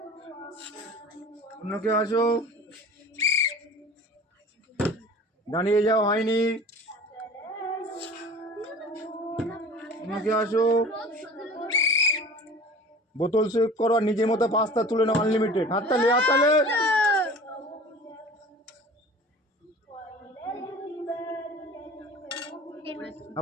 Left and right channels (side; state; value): both; normal; correlation 0.41